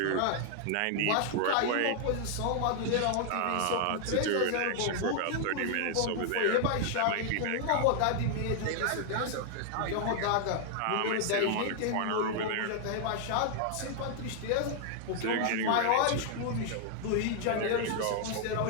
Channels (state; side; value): different; both; correlation 0.00